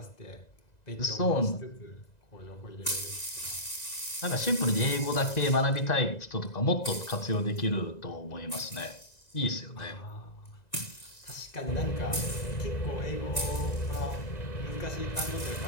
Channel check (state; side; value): late; right; 2.0 ms